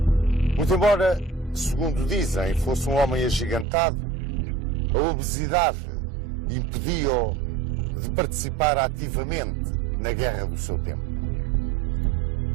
Muito embora, segundo dizem, fosse um homem agigantado, a obesidade impediu-o de participar ativamente na guerra do seu tempo.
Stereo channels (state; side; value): drops out; left; at 3.7 s